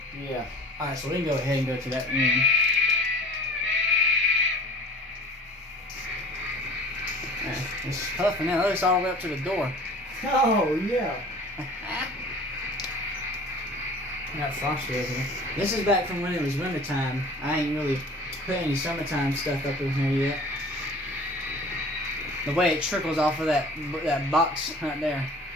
Yeah. Alright, so we can go ahead and go to that room. It's puffing out. It's all the way up to the door. Oh, yeah. I got frosty over here. This is back from when it was wintertime. I ain't really put any summertime stuff up in here yet. The way it trickles off of that box right there,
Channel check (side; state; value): both; normal; correlation 0.44